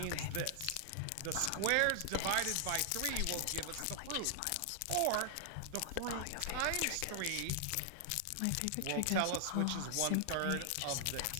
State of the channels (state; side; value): different; both; correlation 0.00